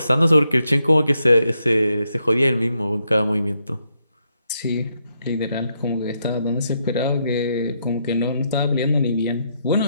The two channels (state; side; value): inverted; both; correlation -0.80